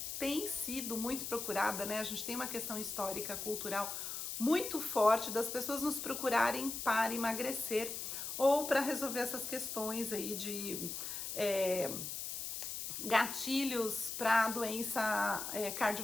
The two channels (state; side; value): noise; left; hiss, 5 dB below the sound